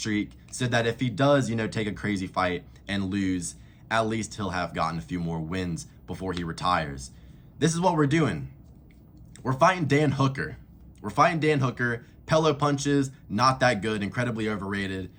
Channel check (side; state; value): both; identical; correlation 1.00